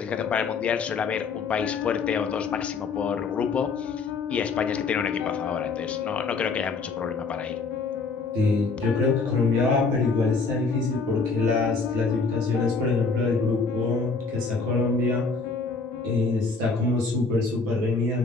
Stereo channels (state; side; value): quieter; right; 4.4 dB